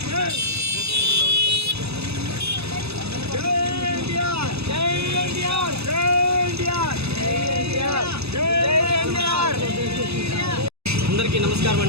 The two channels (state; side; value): late; left; 0.79 ms